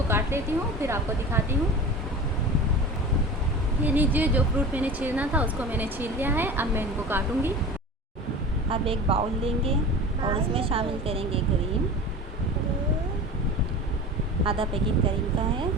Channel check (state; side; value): normal; both; correlation 0.34